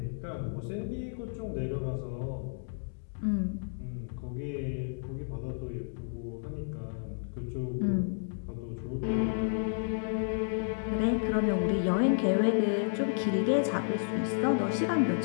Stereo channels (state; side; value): silent; right; digital silence